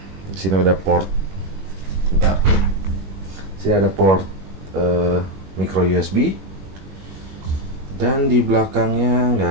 Di sini ada port. Bentar. Di sini ada port micro USB. Dan di belakangnya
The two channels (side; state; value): left; late; 21 ms